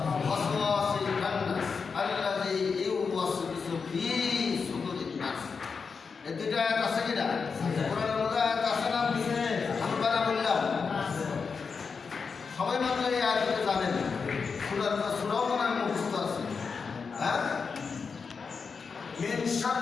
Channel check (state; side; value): quieter; right; 5.3 dB